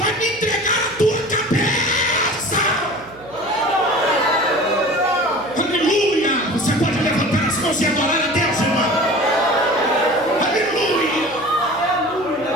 me entregar a tua cabeça. Aleluia. Você pode levantar as mãos e adorar a Deus, irmão. Aleluia.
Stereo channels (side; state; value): right; noise; hum, 22 dB below the sound